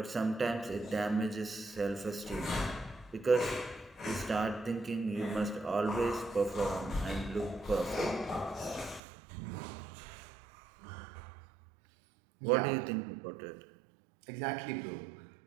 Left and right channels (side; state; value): left; drops out; at 9.0 s